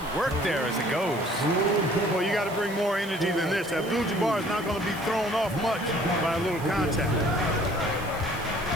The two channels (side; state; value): right; noise; hiss, 18 dB below the sound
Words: work there as it goes. Well, you got to bring more energy than this. Abdul-Jabbar is not going to be thrown off much by a little contact.